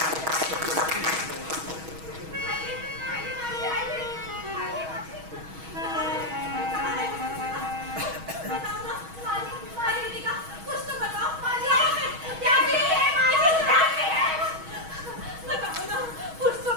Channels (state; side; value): late; left; 6.3 ms